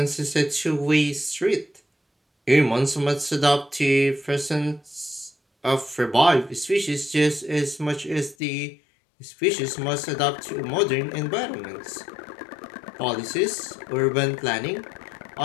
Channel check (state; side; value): drops out; right; at 8.3 s